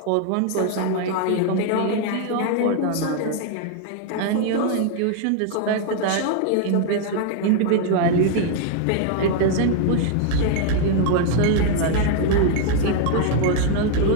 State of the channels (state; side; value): different; both; correlation 0.00